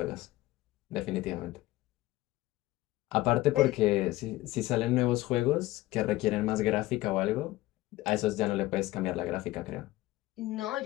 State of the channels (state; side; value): quieter; right; 17.5 dB